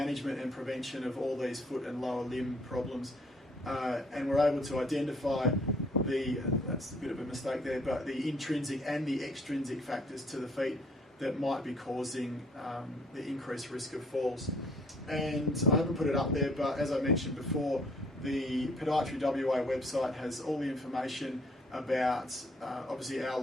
and prevention of all these foot and lower limb problems. And we're able to identify that's a bit of a mistake there, but the intrinsic and the extrinsic factors to the feet that might be causing the increased risk of falls. And I haven't put it up there, but as I mentioned before, the Podiatry WA website has all the information about obviously our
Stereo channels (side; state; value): both; normal; correlation 0.61